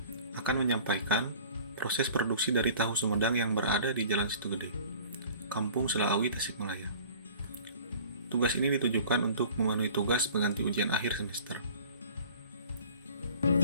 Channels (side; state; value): both; inverted; correlation -0.47